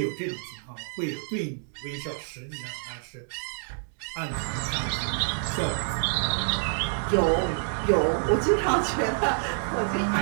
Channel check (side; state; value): left; silent; digital silence